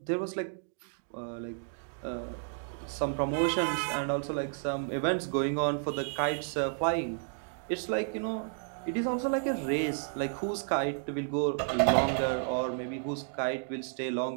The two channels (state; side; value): silent; left; digital silence